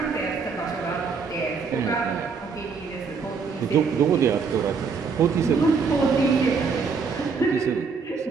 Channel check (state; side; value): quieter; left; 5.3 dB